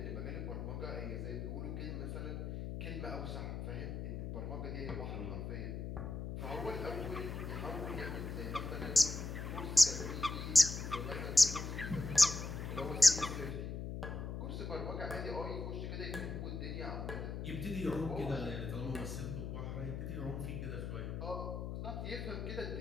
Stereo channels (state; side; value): noise; left; hum, 5 dB below the sound